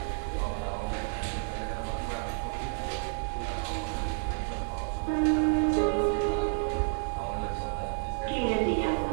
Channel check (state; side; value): silent; left; 58 dB below the other